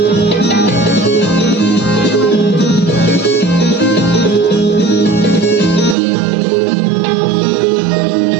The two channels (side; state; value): left; drops out; at 6.0 s